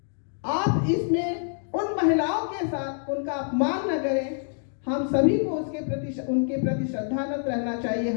आप इसमें उन महिलाओं के साथ उनका अपमान न करें। हम सभी को उनके प्रति श्रद्धानत रहना चाहिए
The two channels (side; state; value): right; silent; digital silence